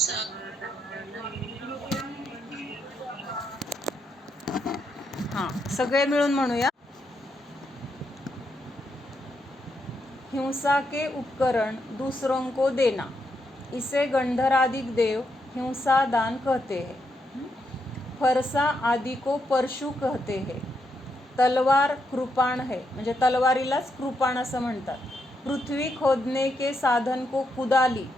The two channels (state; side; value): normal; both; correlation 0.80